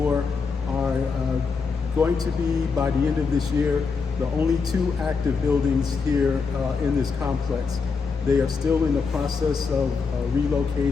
are going to be, by the end of this year, the only two active buildings here in this complex. They are still in the process of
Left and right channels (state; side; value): quieter; right; 5.0 dB